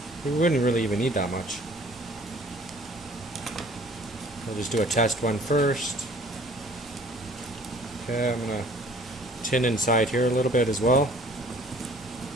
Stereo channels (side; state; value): both; normal; correlation 0.53